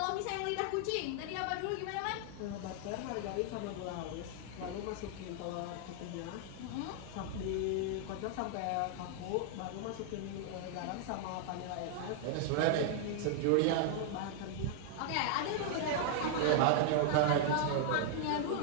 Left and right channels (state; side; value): different; both; correlation 0.00